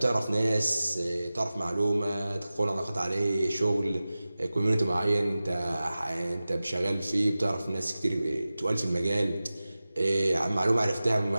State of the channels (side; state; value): both; inverted; correlation -0.96